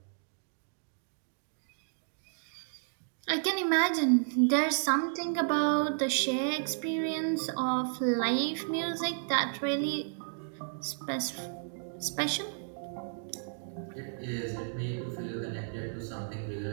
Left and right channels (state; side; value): silent; left; digital silence